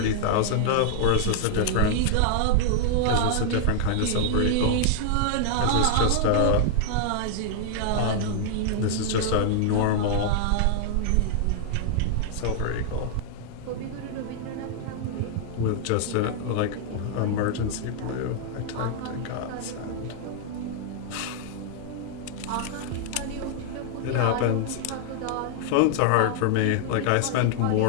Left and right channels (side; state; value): both; different; correlation -0.01